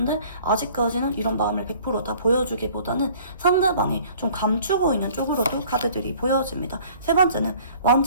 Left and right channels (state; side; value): inverted; both; correlation -0.52